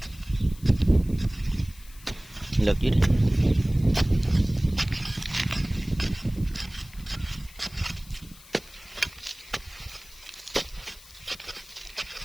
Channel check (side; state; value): left; noise; hiss, 21 dB below the sound